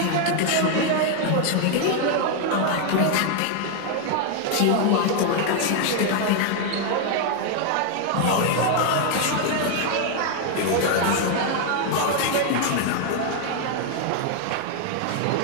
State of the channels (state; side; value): different; both; correlation 0.01